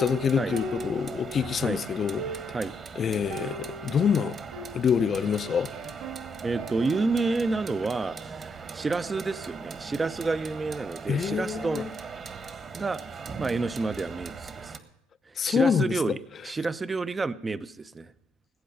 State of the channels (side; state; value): both; normal; correlation 0.78